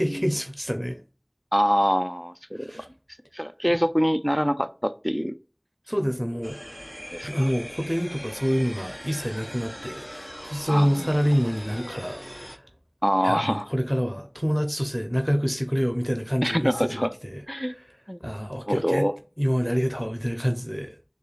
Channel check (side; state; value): both; identical; correlation 1.00